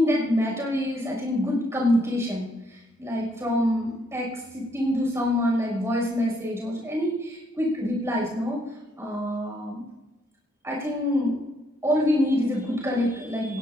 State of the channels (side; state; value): both; normal; correlation 0.71